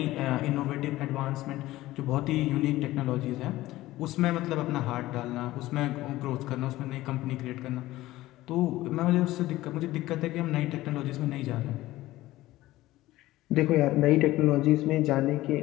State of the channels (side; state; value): right; quieter; 16.8 dB